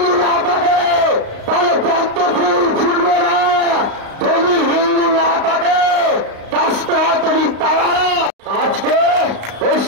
না থাকে তাহলে পদ্ম ফুল ফুটবে না, যদি হিন্দু না থাকে কাস্তে হাতরি তারা। আজকে ওই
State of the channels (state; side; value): late; left; 35 ms